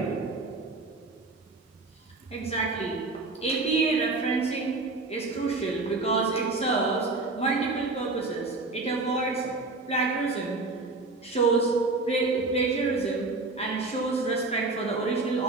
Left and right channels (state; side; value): quieter; left; 3.4 dB